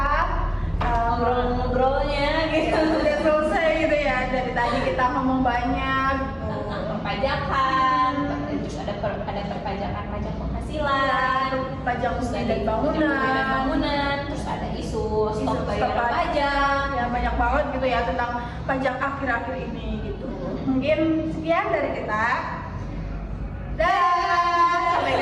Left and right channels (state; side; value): identical; both; correlation 1.00